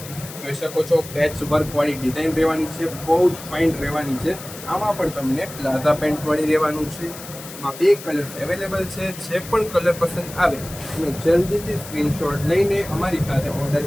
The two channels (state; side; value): noise; left; hiss, 14 dB below the sound